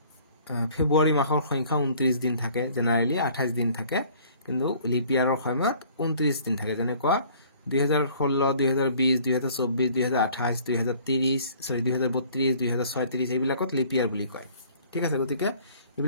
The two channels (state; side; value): inverted; both; correlation -0.54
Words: ফেব্ৰুৱাৰী মাহৰ সংখ্যা 29 দিন থাকে জেনাৰেলি 28 দিন থাকে কিন্তু লিপিয়াৰৰ সময়ত 29 দিন থাকে যেনেকুৱা 2016 2020 2024 2028 2030 সৰি 2032 2036 এইবিলাকত লিপিয়াৰ বুলি কয় ঠিক আছে গতিকে